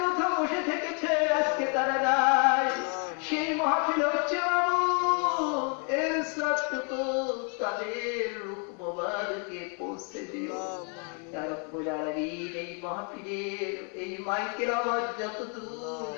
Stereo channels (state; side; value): quieter; right; 39.0 dB